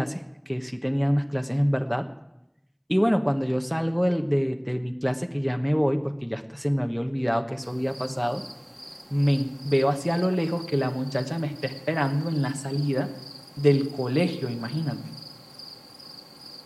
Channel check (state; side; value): identical; both; correlation 1.00